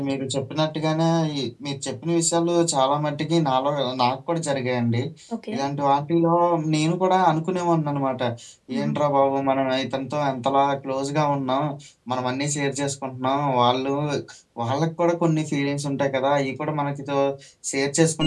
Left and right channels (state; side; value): identical; both; correlation 1.00